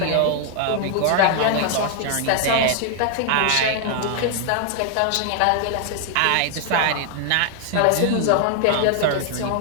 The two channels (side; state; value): both; different; correlation 0.00